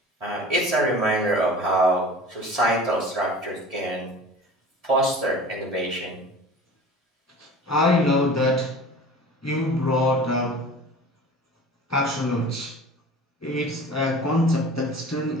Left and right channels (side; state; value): both; normal; correlation 0.40